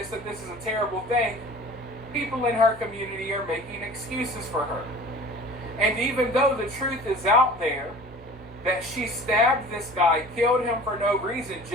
that this is a terrible thing, people in her community are making excuses for her. And even though the truth is out there, that she stabbed this guy, killed him for no reason,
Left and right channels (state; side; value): normal; both; correlation 0.42